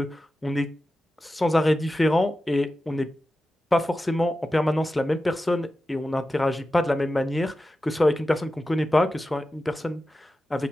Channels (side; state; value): both; normal; correlation 0.93